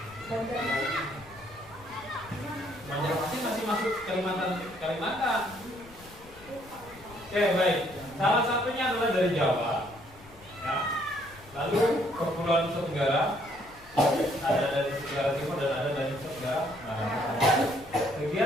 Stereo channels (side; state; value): left; noise; rumble, 23 dB below the sound